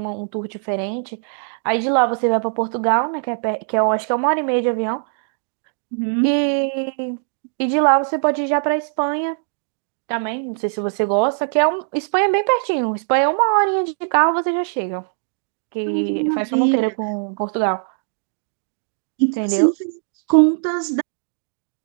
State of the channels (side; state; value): left; silent; 65 dB below the other